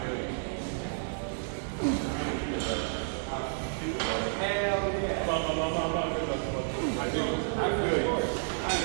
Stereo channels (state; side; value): silent; left; 57 dB below the other